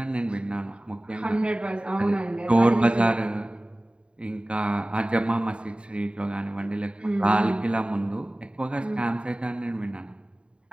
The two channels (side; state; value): left; late; 0.054 ms